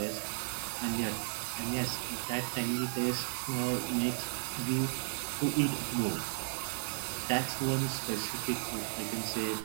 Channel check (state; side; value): silent; left; digital silence